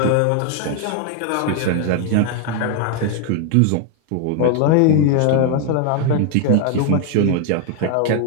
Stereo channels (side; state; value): both; different; correlation 0.00